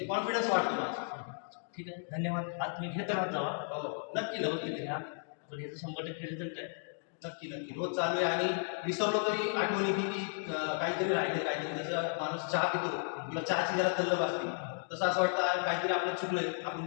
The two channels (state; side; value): silent; right; digital silence